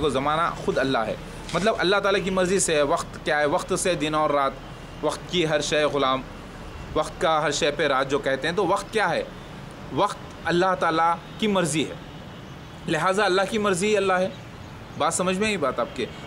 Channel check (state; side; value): identical; both; correlation 1.00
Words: ज़माना ख़ुद अल्लाह है। मतलब अल्लाह ताला की मर्ज़ी से है। वक्त क्या है? वक्त से दिन और रात, वक्त की हर शय ग़ुलाम, वक्त का हर शय पे राज जो कहते हैं, तो वक्त क्या है? वक्त अल्लाह ताला की मर्ज़ी है, लिहाजा अल्लाह की मर्ज़ी ही अल्लाह है। बात समझ में आई बात आपके?